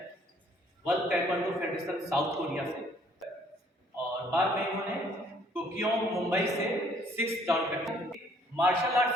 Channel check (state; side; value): normal; both; correlation 0.62